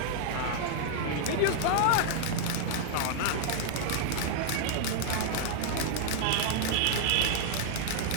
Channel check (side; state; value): both; different; correlation -0.01